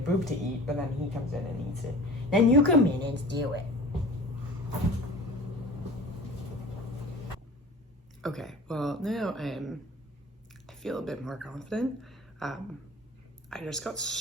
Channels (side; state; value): both; normal; correlation 0.41